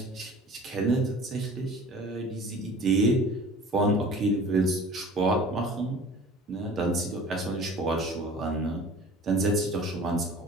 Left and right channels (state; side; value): normal; both; correlation 0.44